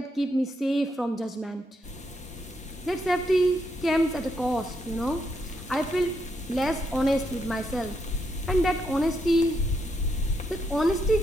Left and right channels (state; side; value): normal; both; correlation 0.79